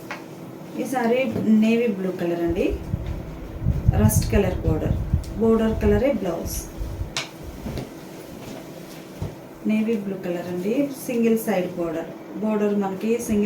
ఈ సారీ నేవీ బ్లూ కలర్ అండి, రస్ట్ కలర్ బోర్డర్ కలరే బ్లౌజ్. నేవీ బ్లూ కలర్ అండి, సింగిల్ సైడ్ బోర్డర్ మనకి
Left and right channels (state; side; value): identical; both; correlation 1.00